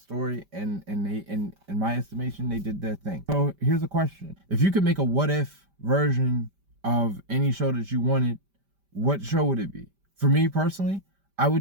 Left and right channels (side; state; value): left; late; 5.1 ms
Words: and they, in my estimation, they did their thing. So here's a question: if you could make a what if version of any show that you wanted, what show would it be? For me personally, I